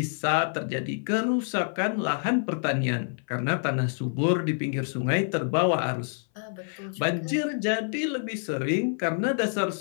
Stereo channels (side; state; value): right; silent; 60 dB below the other